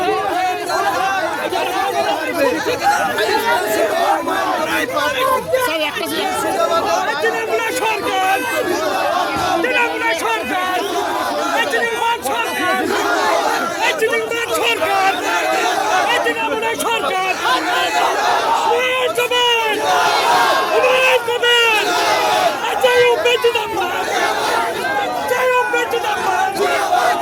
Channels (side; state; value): both; identical; correlation 1.00